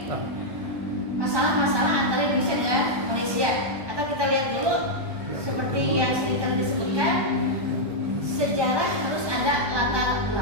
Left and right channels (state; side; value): late; left; 1.2 ms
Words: masalah-masalah antara Indonesia dengan Malaysia. Atau kita lihat dulu seperti yang sering kali disebutkan, sejarah harus ada latar